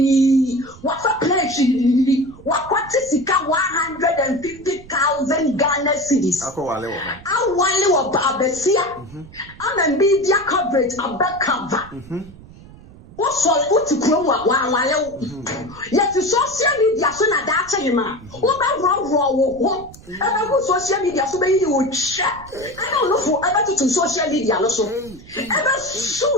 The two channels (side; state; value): right; noise; rumble, 20 dB below the sound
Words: What's a place? What is 150,000 Ghana cities? I want Babesia. I'm a media coverage, a back cover. What to grow while yet to social media so that that's a man. What wrong? Ever social media so many you would share. I don't know for ever to social media also. Ever